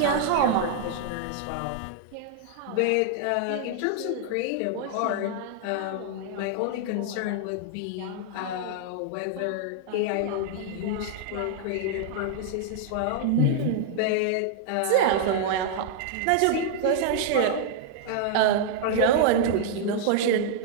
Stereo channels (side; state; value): both; different; correlation -0.01